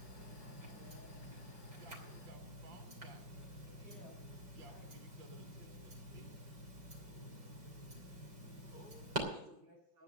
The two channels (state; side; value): late; left; 5.2 ms